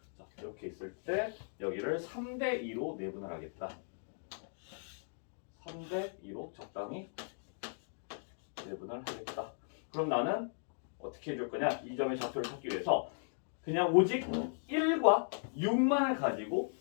자, 이렇게 있을 때 여기를 3대 2로 내분을 하겠다. 3대 2로 적당히 내분을 하겠다. 그럼 나는 어떻게 해줄 거냐? 이 점의 좌표를 찾기 위해서 그냥 오직 1과 6만을 가지고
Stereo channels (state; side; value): silent; right; digital silence